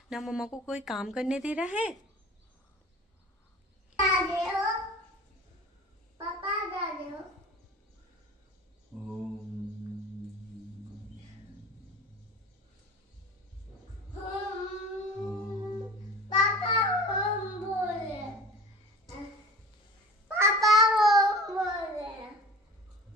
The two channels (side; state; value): both; normal; correlation 0.40